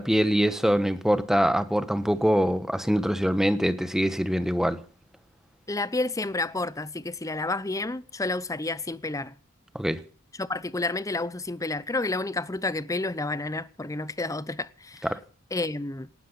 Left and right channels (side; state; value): both; normal; correlation 0.80